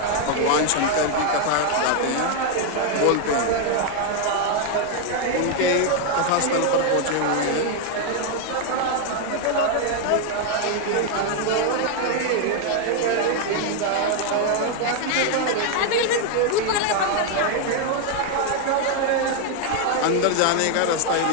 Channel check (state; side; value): different; both; correlation 0.01